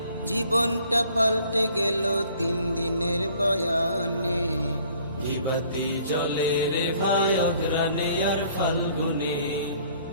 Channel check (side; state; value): both; inverted; correlation -0.57